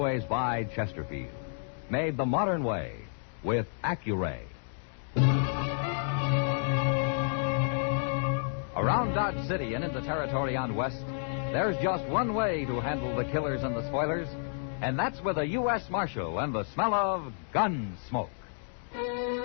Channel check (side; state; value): right; silent; digital silence